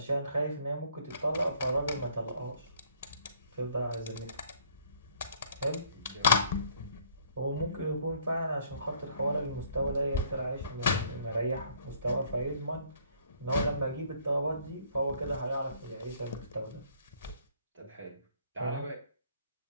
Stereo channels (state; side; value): inverted; both; correlation -0.61